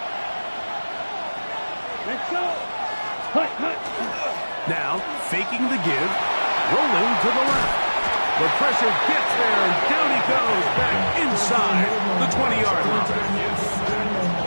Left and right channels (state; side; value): inverted; both; correlation -1.00